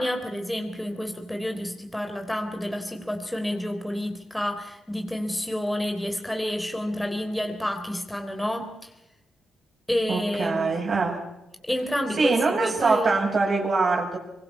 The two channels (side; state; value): both; normal; correlation 0.91